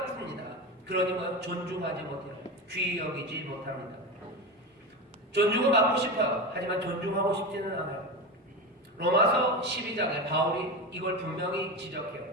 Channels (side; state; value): both; normal; correlation 0.21